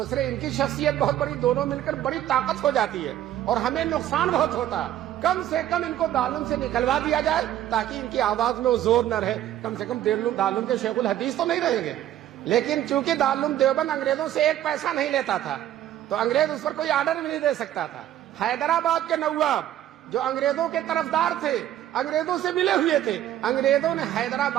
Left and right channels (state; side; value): quieter; left; 12.2 dB